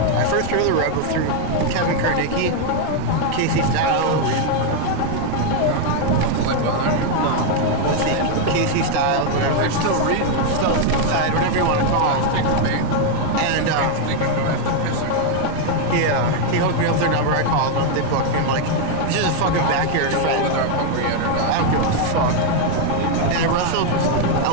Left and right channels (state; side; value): different; both; correlation 0.01